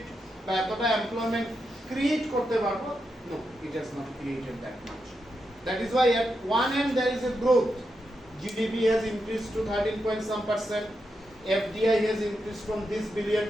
বা এতটা এমপ্লয়মেন্ট ক্রিয়েট করতে পারবো, no, it has not created that much. That is why at one end there is a growth. GDP has increased to 13 point some %. FDI has increased from this billion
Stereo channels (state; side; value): normal; both; correlation 0.85